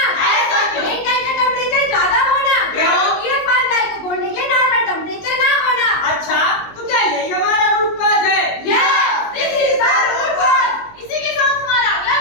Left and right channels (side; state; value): right; late; 19 ms